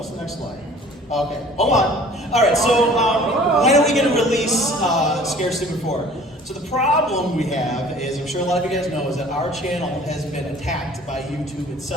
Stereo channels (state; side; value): normal; both; correlation 0.49